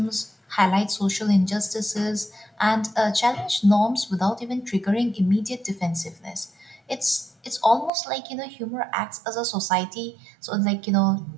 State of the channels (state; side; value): drops out; left; at 7.9 s